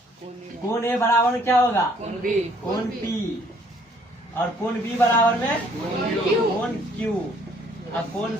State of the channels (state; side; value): normal; both; correlation 0.62